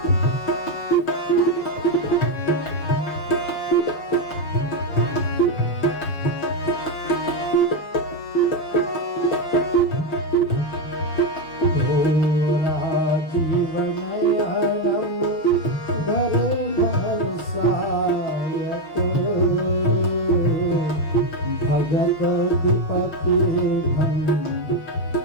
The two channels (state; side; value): late; right; 6.3 ms